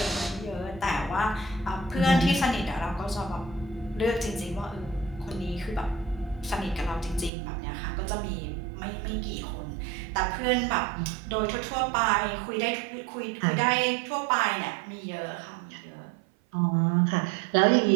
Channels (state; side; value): drops out; left; at 7.3 s